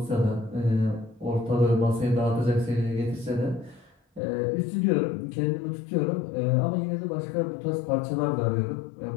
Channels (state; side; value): drops out; right; at 4.2 s